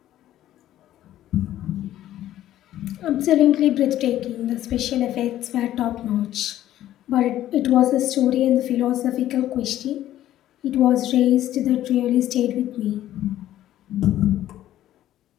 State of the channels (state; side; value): quieter; right; 13.0 dB